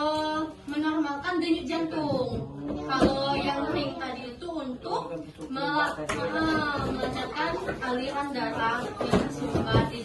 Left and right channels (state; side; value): identical; both; correlation 1.00